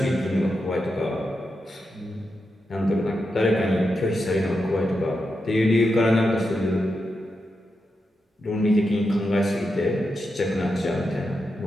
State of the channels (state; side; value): normal; both; correlation 0.87